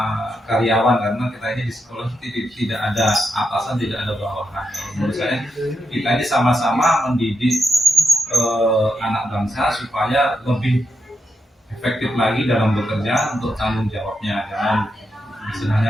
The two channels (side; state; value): both; normal; correlation 0.84